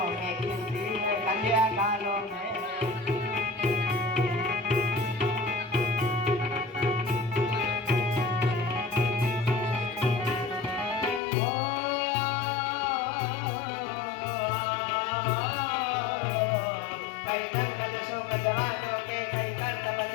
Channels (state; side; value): drops out; right; at 11.2 s